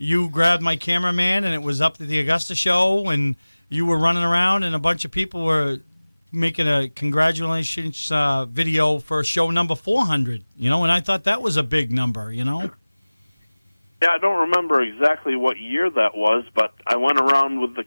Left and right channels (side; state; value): both; inverted; correlation -1.00